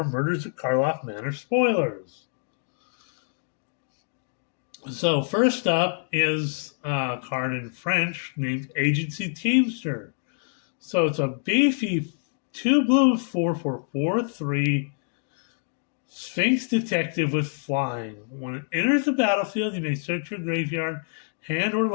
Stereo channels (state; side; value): silent; right; digital silence